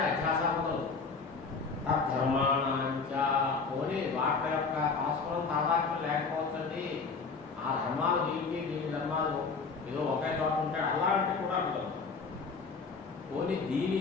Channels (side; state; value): right; quieter; 4.7 dB